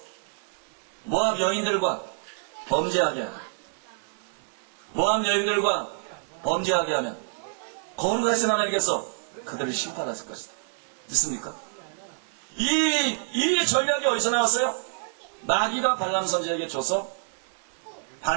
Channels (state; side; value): silent; left; digital silence